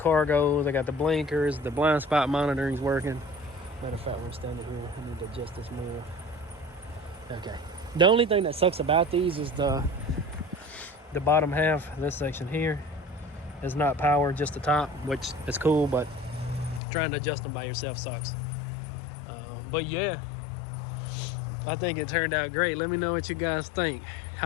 I got the blinkers, the blind spot monitoring's working. Matter of fact, we're standing here. I need to adjust this more. Okay. The only thing that sucks about these is the bottom half, this section here, is not powered, just the top, which is cool, but trying to adjust them by yourself sucks. But yeah, I think it turned out great. Let me know what you guys think.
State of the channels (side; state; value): right; drops out; at 16.8 s